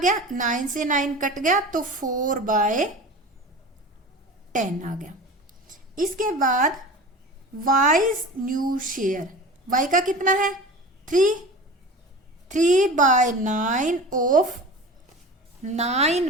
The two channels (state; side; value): normal; both; correlation 0.35